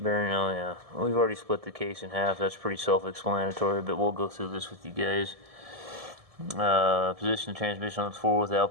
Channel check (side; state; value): left; late; 1.7 ms